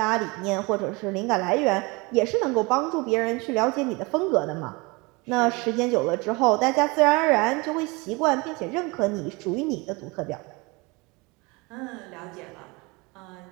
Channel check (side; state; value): left; quieter; 26.3 dB